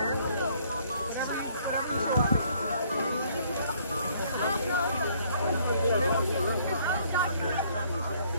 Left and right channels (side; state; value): both; inverted; correlation -0.63